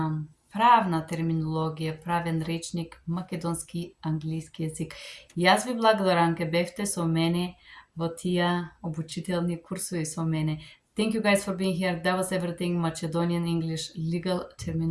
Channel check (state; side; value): identical; both; correlation 1.00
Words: правна терминологија, правен речник, македонски, англиски јазик. Јас ви благодарам ке бевте со мене во тие обучителни курсови со мене. Thank you guys for being here. That was everything Macedonian English legal